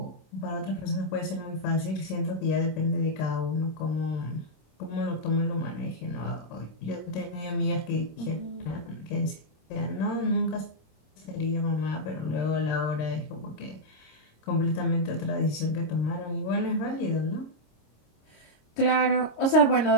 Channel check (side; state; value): right; late; 26 ms